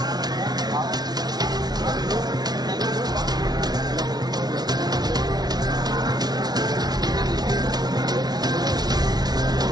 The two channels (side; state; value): left; late; 0.19 ms